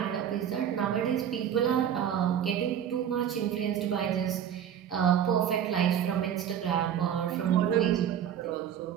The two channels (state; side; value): quieter; left; 9.4 dB